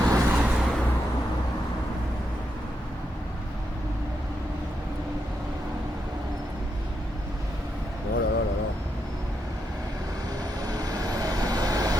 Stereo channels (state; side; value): normal; both; correlation 0.83